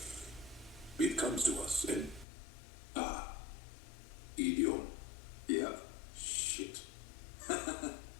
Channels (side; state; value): right; drops out; at 2.2 s